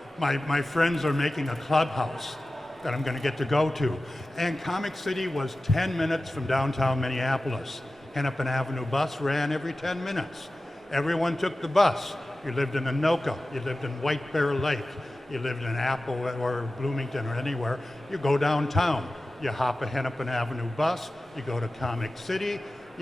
my friends are making a clubhouse that I'm going to get to go to. And Comic City was 10 minutes from downtown Minneapolis. Hennepin Avenue bus ran every 10 minutes. Everyone took the bus. You lived in Anoka, you lived in White Bear Lake, you lived in Apple or Bloomington or anywhere, you go downtown. You hop a Hennepin Avenue bus, you go to Comic City,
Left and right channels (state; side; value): normal; both; correlation 0.95